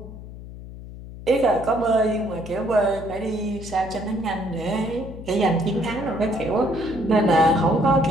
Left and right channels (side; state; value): left; noise; hum, 13 dB below the sound